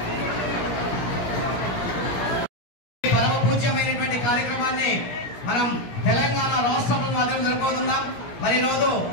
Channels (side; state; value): right; late; 17 ms